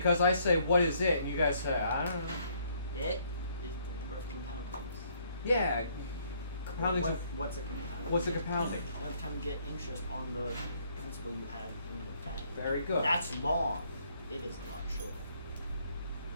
I say, what is it? And you guys say, I don't know. It is the number of compoundings. Yeah. Compounding. What's a compounding? What's a compounding? Every time you get interest on the principal you have in the bank. Very good. That's long. It is a lot shorter.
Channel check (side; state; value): both; inverted; correlation -0.66